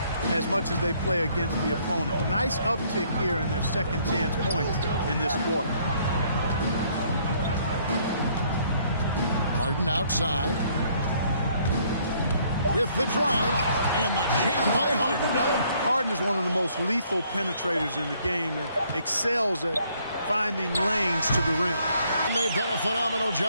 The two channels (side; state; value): both; inverted; correlation -0.65